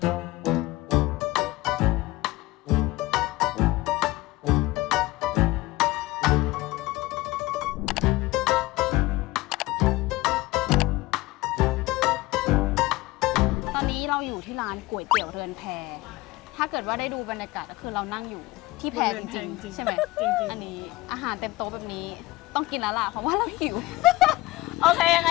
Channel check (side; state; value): right; quieter; 19.4 dB